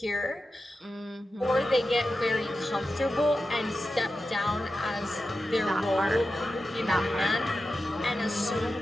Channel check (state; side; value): normal; both; correlation 0.92